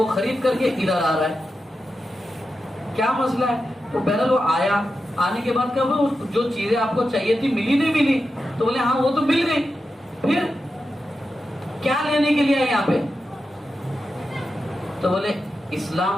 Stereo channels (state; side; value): normal; both; correlation 0.90